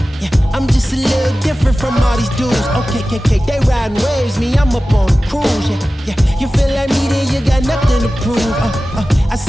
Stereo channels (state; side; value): normal; both; correlation 0.95